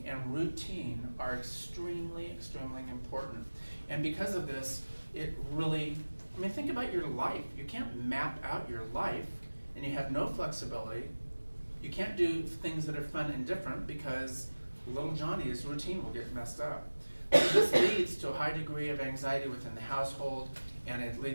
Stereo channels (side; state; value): both; inverted; correlation -1.00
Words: and routine are extremely important. And because of this, it really, I mean, think about your life. You can't map out your life and you have no flexibility. You can't do things that are fun and different, because little Johnny's routine will get messed up. So this leads to a high degree of anxiety within the household, and it